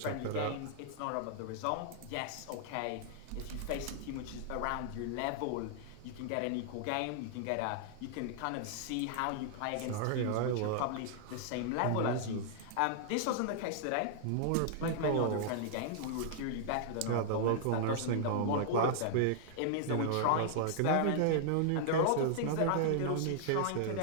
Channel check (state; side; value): different; both; correlation -0.01